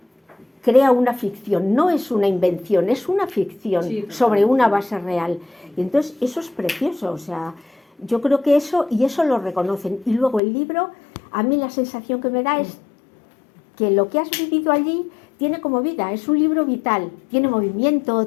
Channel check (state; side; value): drops out; right; at 10.4 s